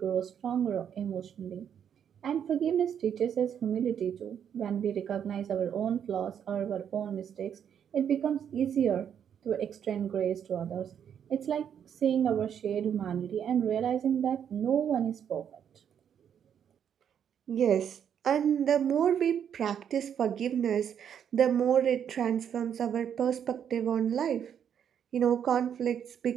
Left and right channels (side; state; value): left; quieter; 8.6 dB